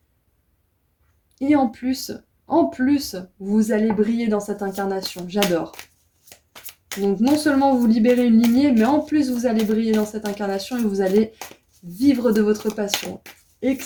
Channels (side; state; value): both; identical; correlation 1.00